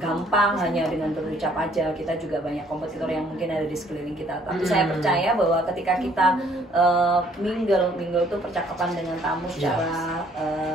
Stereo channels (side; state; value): both; normal; correlation 0.62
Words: hanya dengan berucap aja. Kita juga banyak kompetitor yang mungkin ada di sekeliling kita, tapi saya percaya bahwa ketika kita mingle tuh percakapan dengan tamu secara